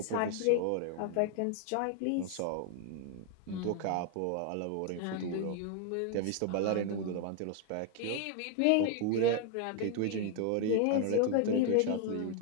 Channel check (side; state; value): both; different; correlation 0.00